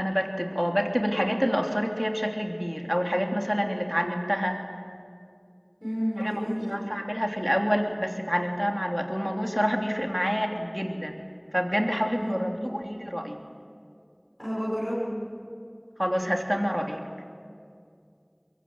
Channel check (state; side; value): identical; both; correlation 1.00